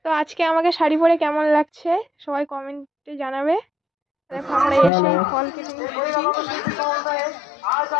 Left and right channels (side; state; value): right; drops out; at 4.9 s